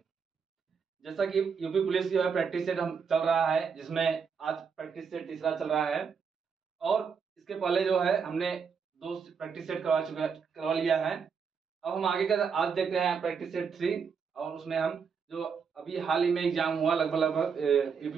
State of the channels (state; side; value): quieter; left; 6.1 dB